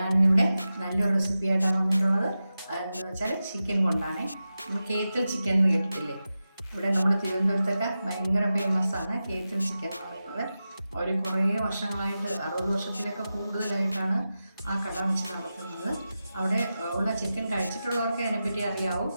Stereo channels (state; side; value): inverted; both; correlation -0.93